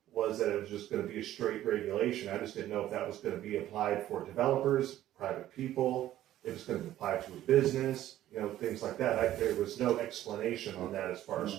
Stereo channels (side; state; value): left; quieter; 13.3 dB